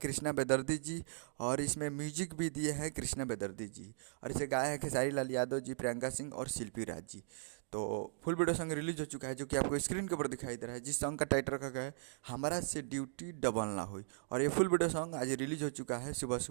बेदर्दी जी और इसमें म्यूजिक भी दिए हैं कृष्णा बेदर्दी जी। और इसे गाया है खेसारी लाल यादव जी, प्रियंका सिंह और शिल्पी राज जी। तो फुल वीडियो सॉन्ग रिलीज हो चुका है जो कि आपको स्क्रीन के ऊपर दिखाई दे रहा है, जिस सॉन्ग का टाइटल रखा गया है हमारा से ड्यूटी डबल ना हुई। और ये फुल वीडियो सॉन्ग आज रिलीज हो चुका है सुबह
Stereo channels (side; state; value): left; silent; digital silence